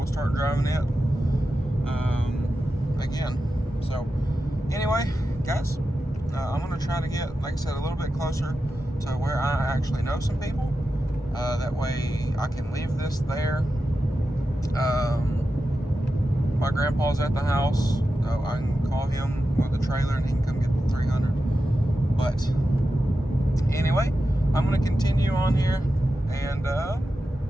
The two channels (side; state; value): both; normal; correlation 0.91